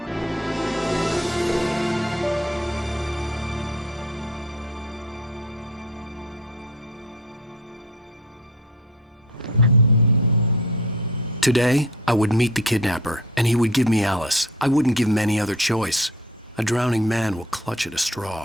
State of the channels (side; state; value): both; normal; correlation 0.45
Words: Today, I would meet the Kidnapper, and he would give me Alice. I wouldn't give him any other choice. A drowning man will clutch at a